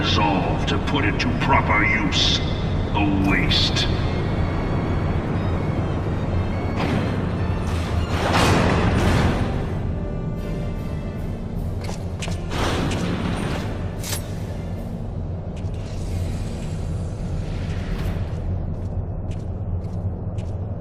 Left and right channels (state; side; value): identical; both; correlation 1.00